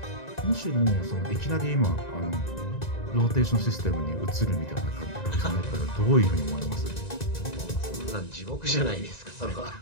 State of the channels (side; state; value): right; late; 1.9 ms